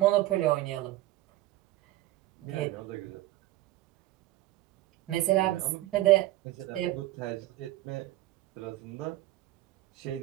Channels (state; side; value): quieter; left; 16.4 dB